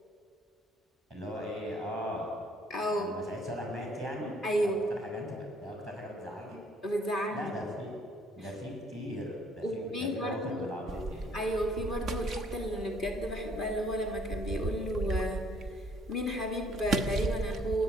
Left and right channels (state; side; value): normal; both; correlation 0.62